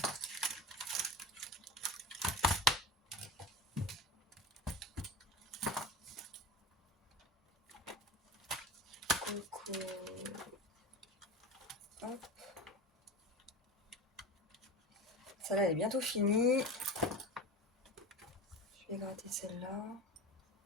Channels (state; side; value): normal; both; correlation 0.30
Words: Coco. Hop. Celle-là, elle est bientôt finie. Je vais gratter celle-là.